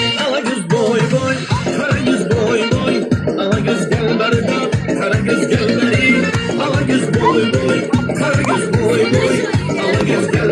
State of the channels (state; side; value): identical; both; correlation 1.00